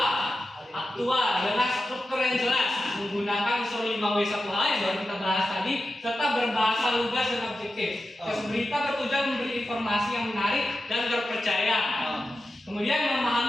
faktual dengan struktur yang jelas menggunakan unsur 5W 1H yang baru kita bahas tadi serta berbahasa lugas dan objektif. Tes berita bertujuan memberi informasi yang menarik dan terpercaya. Kemudian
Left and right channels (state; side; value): normal; both; correlation 0.92